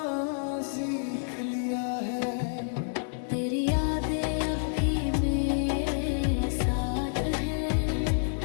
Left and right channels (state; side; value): silent; right; 59 dB below the other